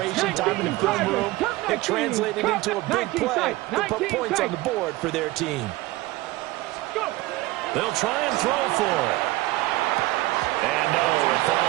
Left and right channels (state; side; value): quieter; left; 19.0 dB